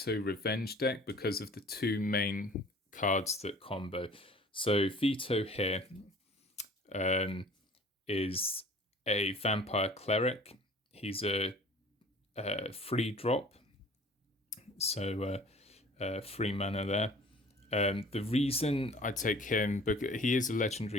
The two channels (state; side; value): normal; both; correlation 0.48